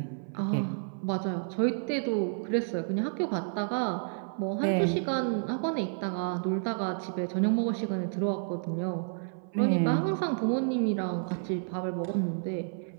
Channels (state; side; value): silent; left; 55 dB below the other